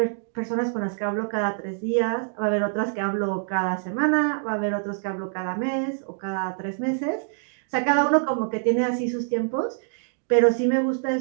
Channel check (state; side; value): silent; left; digital silence